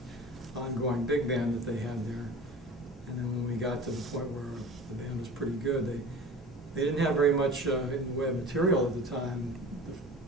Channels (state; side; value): normal; both; correlation 0.38